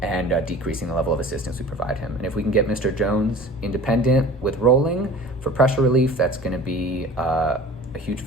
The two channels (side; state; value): both; normal; correlation 0.41